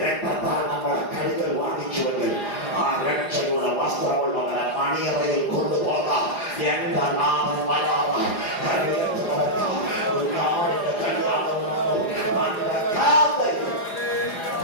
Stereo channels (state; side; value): late; right; 4.9 ms